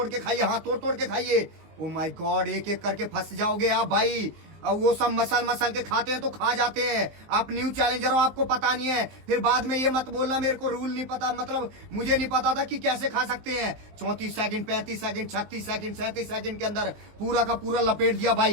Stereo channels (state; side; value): late; left; 19 ms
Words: के खाइए, हाँ तोड़ के खाइए। ओ माय गॉड, एक करके फंस जाओगे आप भाई। अब वो सब मसल के खाते हैं तो खा जाते हैं। आप न्यू चैलेंजर हो, आपको पता नहीं है, फिर बाद में ये मत बोलना मेरे को रूल नहीं पता, मतलब मुझे नहीं पता था कि कैसे खा सकते हैं। 34 सेकंड, 35 सेकंड, 36 सेकंड, 37 सेकंड के अंदर पूरा का पूरा लपेट दिया